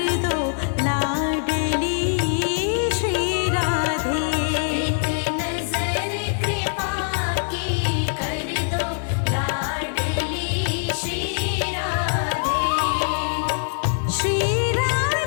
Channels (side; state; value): right; silent; 63 dB below the other